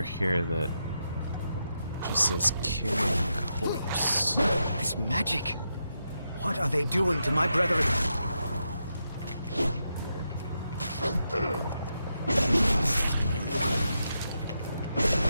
here that just says Kyrian corpse. This magic. What are they doing to my brethren?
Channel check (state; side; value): inverted; both; correlation -0.85